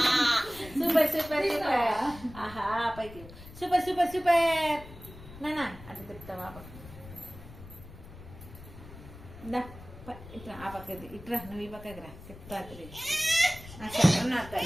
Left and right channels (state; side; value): noise; left; rumble, 16 dB below the sound